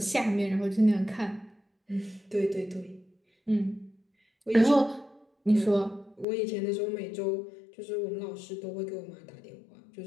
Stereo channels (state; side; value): drops out; right; at 6.2 s